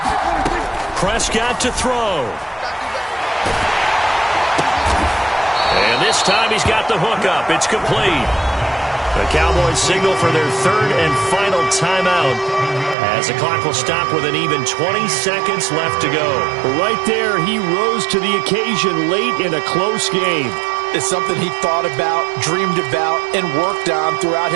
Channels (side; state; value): left; drops out; at 13.0 s